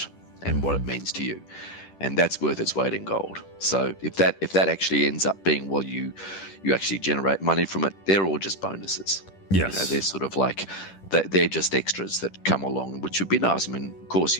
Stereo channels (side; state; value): right; late; 10 ms